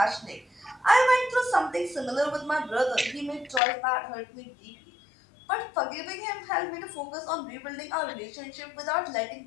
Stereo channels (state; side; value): drops out; right; at 3.6 s